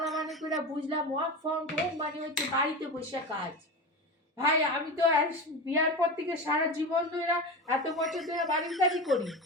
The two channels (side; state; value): both; normal; correlation 0.25